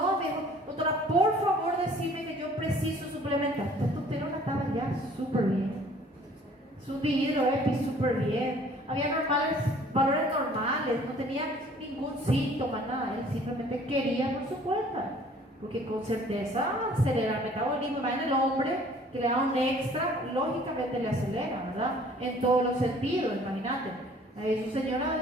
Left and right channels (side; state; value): both; normal; correlation 0.54